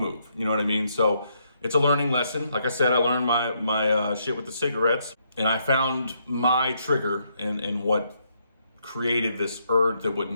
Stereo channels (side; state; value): both; inverted; correlation -0.75